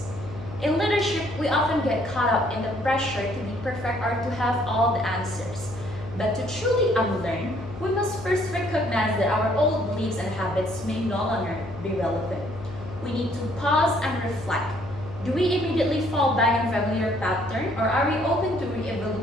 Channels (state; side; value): noise; left; hum, 13 dB below the sound